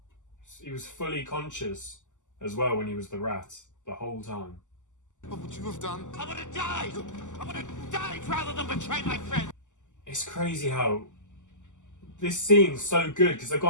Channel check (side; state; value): right; late; 0.86 ms